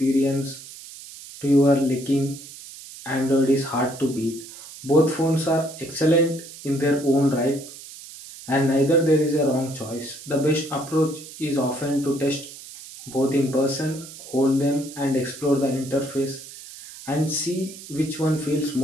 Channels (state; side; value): noise; right; hiss, 15 dB below the sound